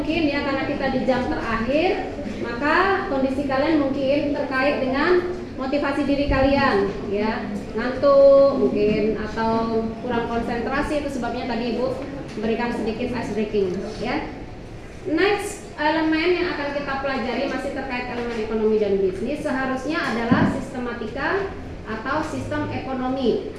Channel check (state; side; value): identical; both; correlation 1.00